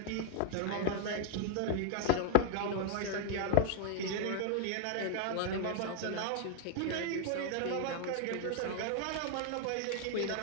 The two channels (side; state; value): both; different; correlation 0.01